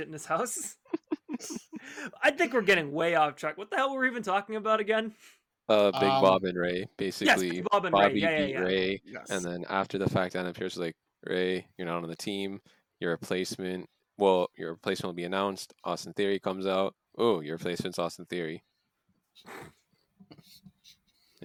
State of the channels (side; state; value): both; identical; correlation 1.00